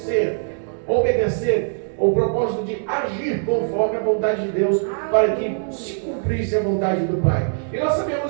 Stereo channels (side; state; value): left; silent; digital silence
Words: o propósito de agir conforme a vontade de Deus, para que se cumprisse a vontade do Pai. E nós